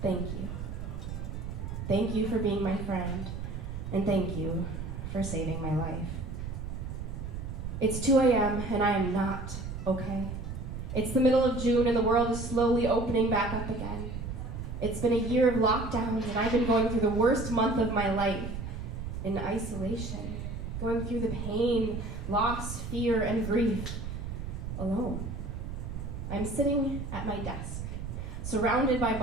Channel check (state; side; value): noise; right; rumble, 6 dB below the sound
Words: thank you. Thank you for being my friend, and thank you for saving my life. It's 2 a.m. and I am not okay. It's the middle of June and the world is slowly opening back up again. It's been a year of lockdowns and I've been going through the worst month of my life in isolation, going through the pain, loss, fear, and grief alone. I'm sitting at my desk, surrounded by